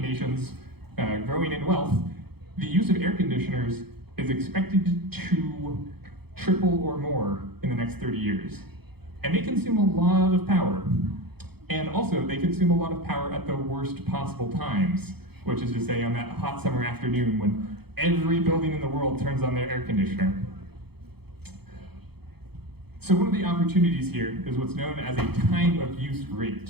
nations growing in wealth, the use of air conditioners is expected to triple or more in the next 30 years. And they consume a lot of power. And also, they consume a lot of power at the worst possible times, which is to say on that hot summer afternoon when every building in the world turns on their air conditioner. So one of the opportunities here is what's known as a time of use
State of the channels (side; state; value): left; late; 0.97 ms